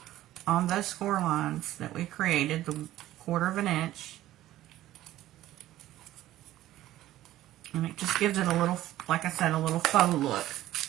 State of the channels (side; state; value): left; quieter; 14.4 dB